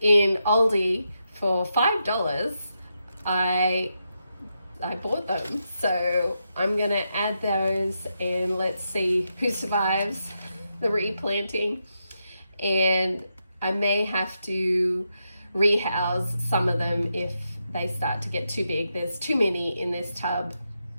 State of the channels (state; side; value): inverted; both; correlation -0.84